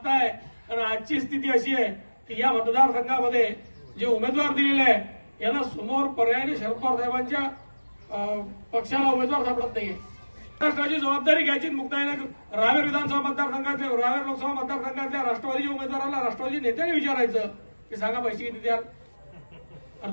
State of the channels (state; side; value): inverted; both; correlation -1.00